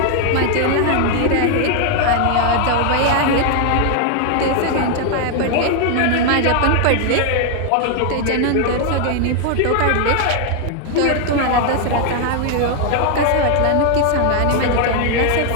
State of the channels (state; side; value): different; both; correlation 0.00